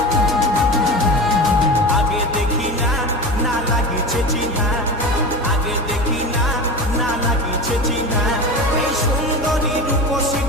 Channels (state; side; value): normal; both; correlation 0.28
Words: আগে দেখি না না লাগিছে চিহ্না আগে দেখি না না লাগিছে চিহ্না এই সুন্দরী রূপসী